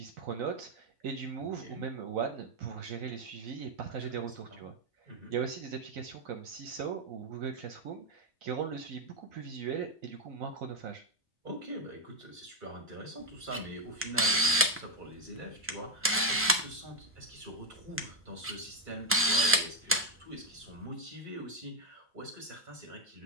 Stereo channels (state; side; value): normal; both; correlation 0.04